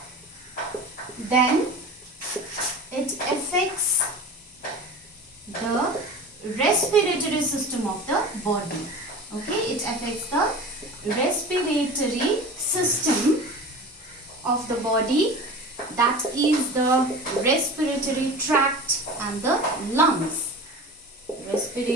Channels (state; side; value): normal; both; correlation 0.35